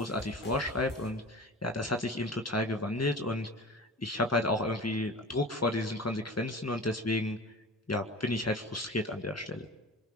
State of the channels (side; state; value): both; normal; correlation 0.36